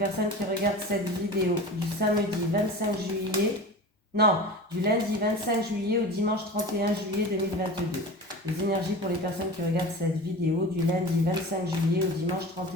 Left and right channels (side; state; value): both; normal; correlation 0.33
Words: qui regardent cette vidéo du samedi 25 juillet... Non, du lundi 25 juillet au dimanche 31 juillet 2022. Les énergies pour les personnes qui regardent cette vidéo du lundi 25 juillet au dimanche